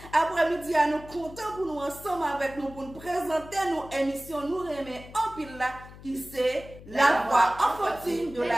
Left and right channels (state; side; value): noise; left; hum, 17 dB below the sound